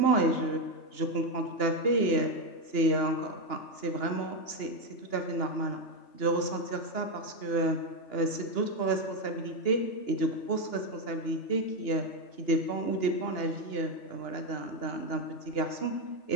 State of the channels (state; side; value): late; right; 2.9 ms